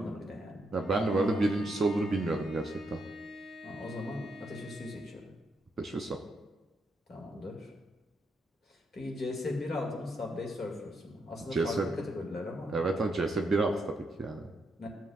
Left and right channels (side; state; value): both; normal; correlation 0.79